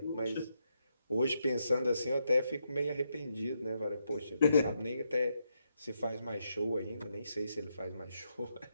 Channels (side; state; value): both; inverted; correlation -0.81